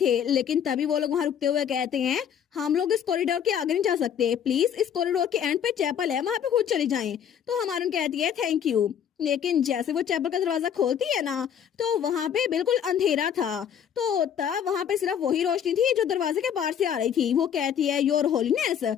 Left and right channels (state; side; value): quieter; right; 8.7 dB